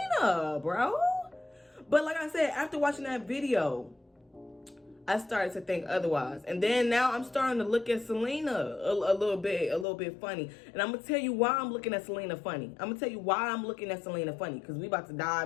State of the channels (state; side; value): drops out; right; at 9.9 s